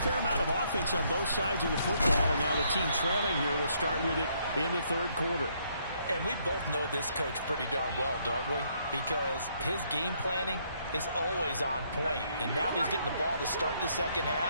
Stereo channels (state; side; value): inverted; both; correlation -0.70